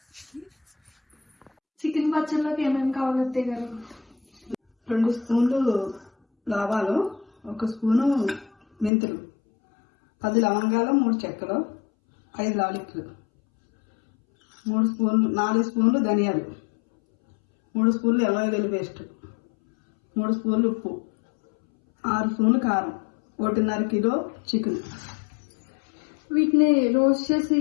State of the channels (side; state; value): right; drops out; at 8.9 s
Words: చికెన్ పచ్చడిలోకి ఏమేమి కావాలి అత్తయ్య గారు? 2 స్పూన్లు ఆవాలు, 1 స్పూను మెంతులు, 10 లవంగాలు, 3 చెక్కలు, 5 లాలిక్లు, 4 స్పూన్లు ధనియాలు, 3 స్పూన్లు అల్లం వెల్లుల్లి పేస్ట్, 3 స్పూన్లు ఉప్పు, 6 స్పూన్లు కారం, 1.5 కిలో చికెన్. వీటిని రోస్ట్ చేసి